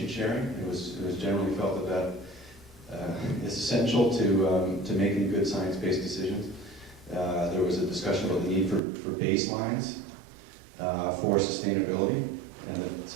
sharing. It was generally felt that is essential to making good science-based decisions. There was a discussion about the need for baselines for sustainability, and that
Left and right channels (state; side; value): drops out; left; at 8.8 s